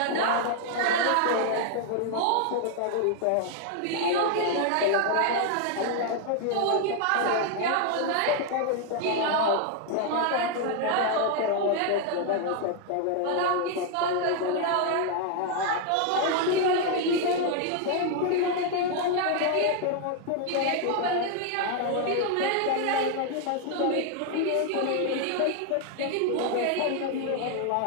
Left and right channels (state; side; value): different; both; correlation 0.00